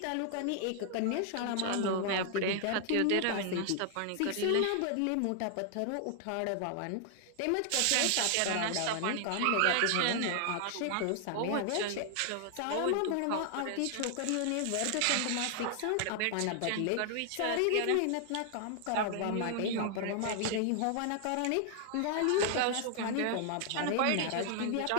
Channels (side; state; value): both; different; correlation 0.00